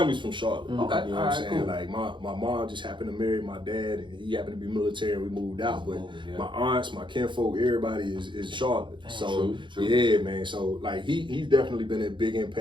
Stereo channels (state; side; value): late; left; 0.23 ms